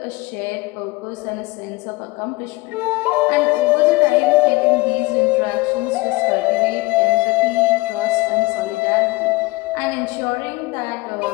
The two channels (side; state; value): right; quieter; 22.4 dB